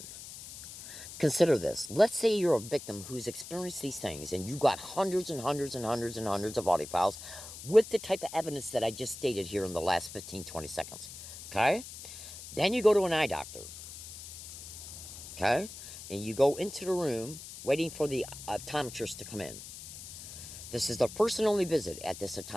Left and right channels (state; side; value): noise; left; hiss, 12 dB below the sound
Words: Consider this. Let's say you're a victim who's experienced these things and you got hundreds and hundreds and hundreds and hundreds of audio files with the type of evidence that I just stated here in the last 15-20 seconds. Okay? Then you go to an eye doctor. Okay? And you go into the room waiting for the optometrist to come in. This is the first and only visit at this